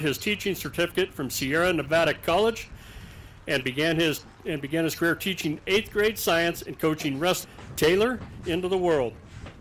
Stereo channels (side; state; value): both; identical; correlation 1.00